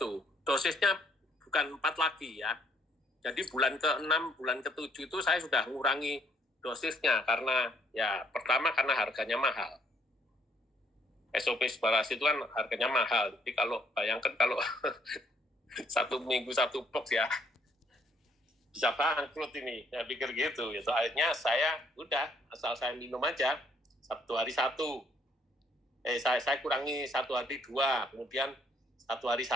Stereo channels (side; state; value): both; normal; correlation 0.66